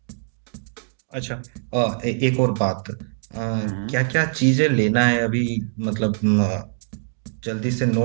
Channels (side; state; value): left; silent; digital silence